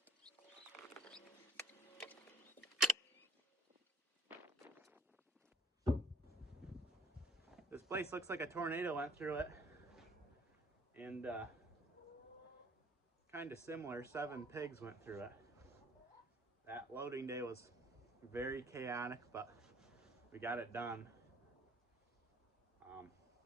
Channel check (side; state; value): both; normal; correlation 0.59